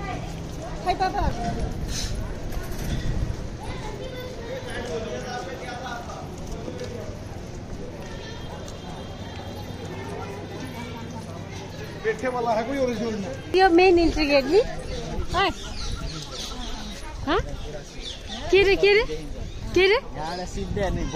खै पापा यो मेन इन्ट्री गेट नि के रे के रे के रे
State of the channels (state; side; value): identical; both; correlation 1.00